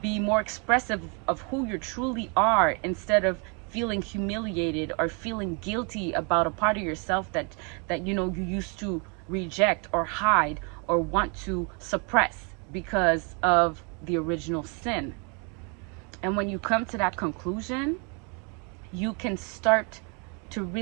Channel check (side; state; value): left; quieter; 35.0 dB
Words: more expressive of who you truly are instead of feeling humiliated or feeling guilty about a part of yourself that you used to reject or hide or want to suppress because of the original sin. And when you come to that conclusion, you can start to